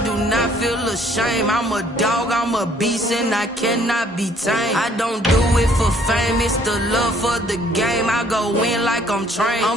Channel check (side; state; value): both; normal; correlation 0.61